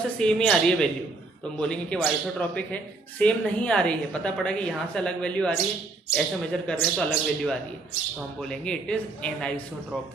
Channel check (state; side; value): quieter; left; 3.4 dB